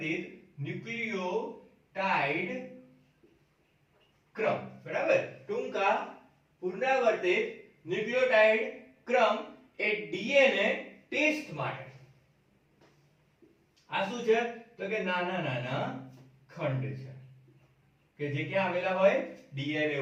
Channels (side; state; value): both; identical; correlation 1.00